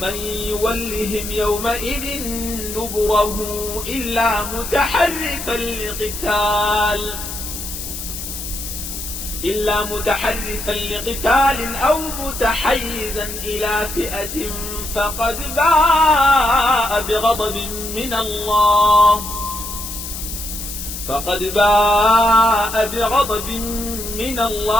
يولهم يومئذ دبره إلا متحرفا لقتال أو متحيزا إلى فئة فقد باء بغضب من الله من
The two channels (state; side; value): noise; left; hiss, 8 dB below the sound